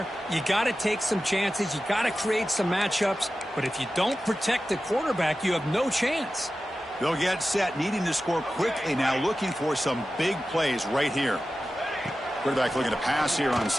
You got to take some chances. You got to create some matchups. But if you don't protect the quarterback, you have no chance. They'll get set, needing to score quickly now, looking for some big plays right here. Quarterback looking to pass here on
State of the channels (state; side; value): normal; both; correlation 0.94